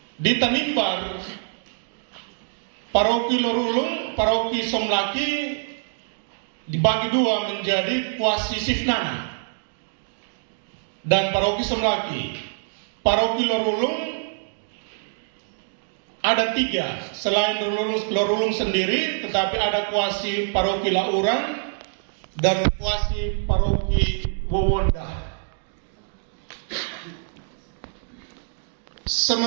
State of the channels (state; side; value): silent; left; digital silence